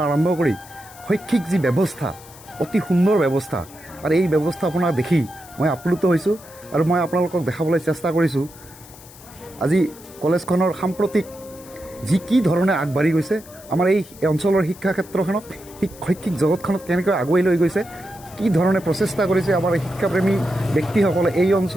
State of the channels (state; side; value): noise; left; hiss, 21 dB below the sound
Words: আৰম্ভ কৰি শৈক্ষিক যি ব্যৱস্থা, অতি সুন্দৰ ব্যৱস্থা, আৰু এই ব্যৱস্থাপনা দেখি মই আপ্লুত হৈছোঁ। আৰু মই আপোনালোকক দেখাবলৈ চেষ্টা কৰিছোঁ আজি কলেজখনৰ সাম্প্ৰতিক যি কি ধৰণে আগবাঢ়ি গৈছে, আমাৰ এই অঞ্চলৰ শিক্ষা ক্ষেত্ৰখনক শৈক্ষিক জগতখনত কেনেকৈ আগুৱাই লৈ গৈছে, কি ধৰণে প্ৰচেষ্টা কৰিছে আমাৰ শিক্ষাপ্ৰেমী ব্যক্তিসকলে। এই